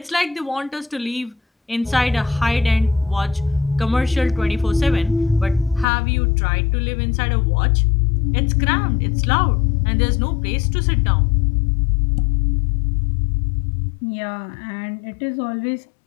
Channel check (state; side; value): drops out; right; at 5.9 s